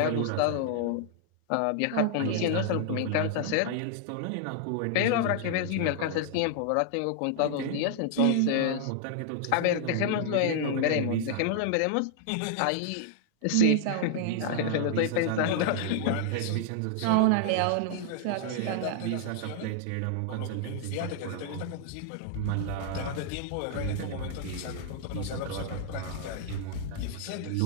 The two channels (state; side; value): different; both; correlation -0.01